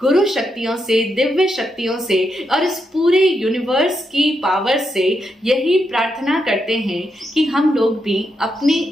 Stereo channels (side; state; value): both; normal; correlation 0.83